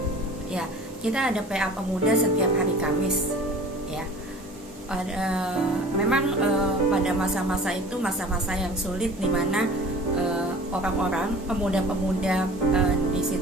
ya kita ada PA Pemuda setiap hari Kamis ya. Memang pada masa-masa itu masa-masa yang sulit, di mana orang-orang pemuda-pemuda di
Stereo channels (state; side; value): normal; both; correlation 0.43